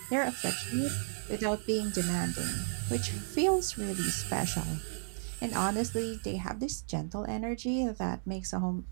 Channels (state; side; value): silent; left; digital silence